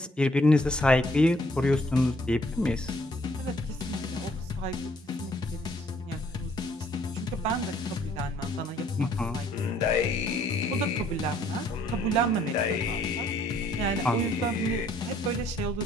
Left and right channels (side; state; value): both; normal; correlation 0.63